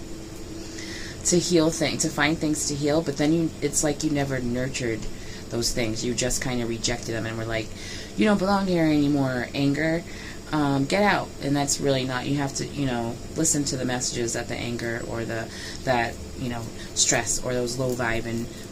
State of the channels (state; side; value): identical; both; correlation 1.00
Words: to heal things, to find things to heal, but then it's like you never nurtured those things. You just kind of rejected them and were like, you don't belong here anymore, anger. Get out. And that's really not, you have to, listen to the messages that the anger or that stress or those low vibe and